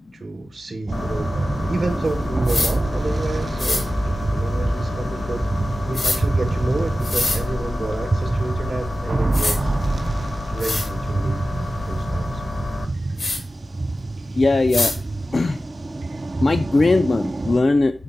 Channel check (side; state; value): both; normal; correlation 0.94